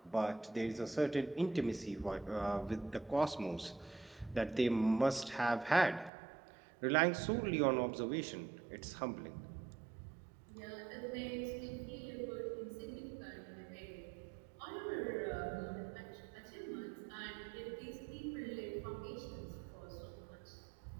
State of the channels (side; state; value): left; drops out; at 6.1 s